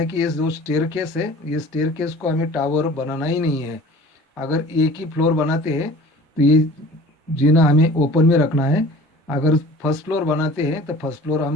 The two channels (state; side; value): normal; both; correlation 0.45